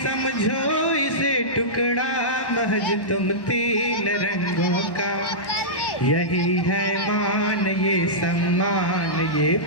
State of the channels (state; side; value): late; right; 1.1 ms